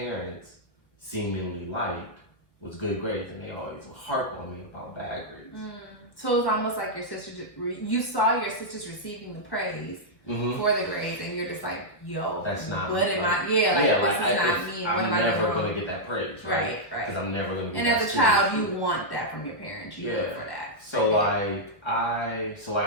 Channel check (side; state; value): right; late; 1.1 ms